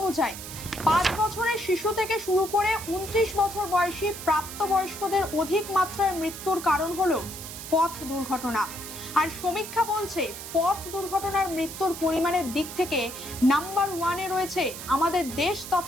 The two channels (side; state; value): right; noise; hiss, 10 dB below the sound